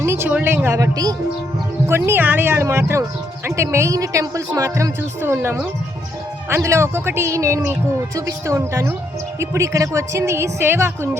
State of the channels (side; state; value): both; normal; correlation 0.75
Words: చూడలేం కాబట్టి కొన్ని ఆలయాలు మాత్రం, అంటే మెయిన్ టెంపుల్స్ మాత్రం చూస్తూ ఉన్నాము. అందులో ఒక్కొక్కటి నేను మీకు చూపిస్తూ ఉంటాను. ఇప్పుడు ఇక్కడికి వచ్చింది